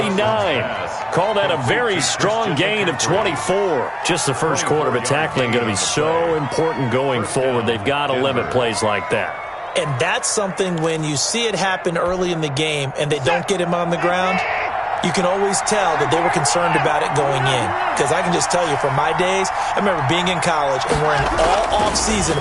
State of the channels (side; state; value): both; identical; correlation 1.00